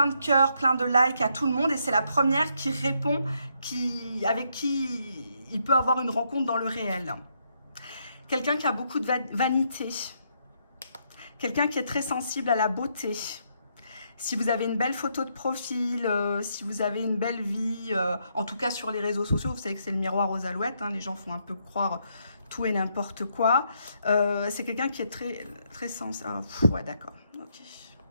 de cœurs, plein de likes à tout le monde et c'est la première qui répond, avec qui il peut avoir une rencontre dans le réel. Quelqu'un qui a beaucoup de vanité, quelqu'un qui est très sensible à la beauté. Si vous avez une belle photo de profil, si vous avez une belle vie, en tout cas sur les réseaux sociaux, vous savez que c'est le miroir aux alouettes, hein, les gens font un peu croire tout et n'importe quoi. C'est quelqu'un qui est très sensible. Ah, ouais, d'accord. Ok.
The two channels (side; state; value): both; inverted; correlation -0.75